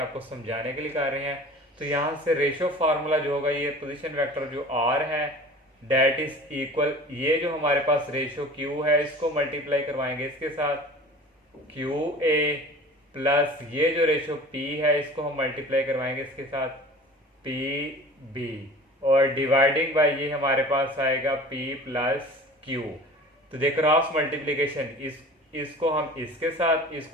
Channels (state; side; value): normal; both; correlation 0.41